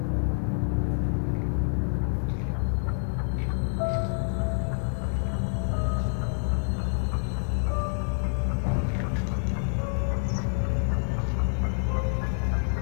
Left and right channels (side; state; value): right; silent; 57 dB below the other